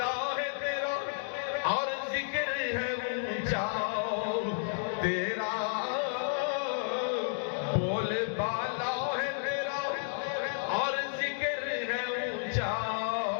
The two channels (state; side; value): silent; right; digital silence